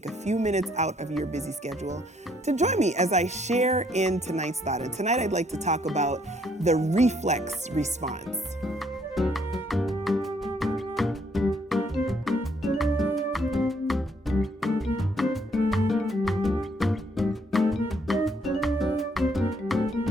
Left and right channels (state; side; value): normal; both; correlation 0.68